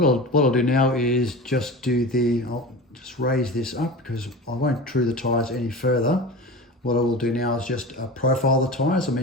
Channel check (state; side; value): normal; both; correlation 0.31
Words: I'll do now is I'll just raise this up because I won't true the tyres any further. What I will do now is just profile the tyres, I